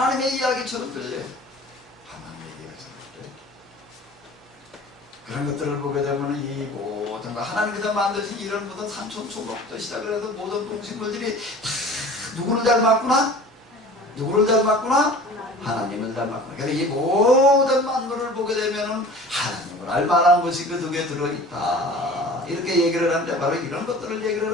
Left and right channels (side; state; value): both; normal; correlation 0.42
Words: 이야기처럼 들려요. 하나님의 이야기처럼 들려요. 그런 것들을 보게 되면 이 모든 거 하나님께서 만드신 이런 모든 산천 초목부터 시작을 해서 모든 동식물들이 다 누구를 닮았구나? 누구를 닮았구나? 하나님을 닮았구나. 그래서 이 모든 만물을 보게 되면 하나님을 알만한 것이 그 속에 들어있다. 이렇게 얘기를 하는데 바로 이런 것들을